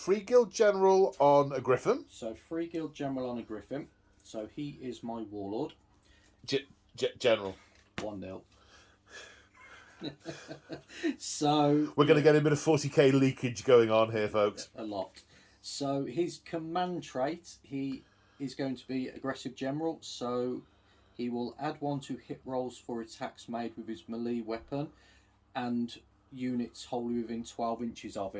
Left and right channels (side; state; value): both; identical; correlation 1.00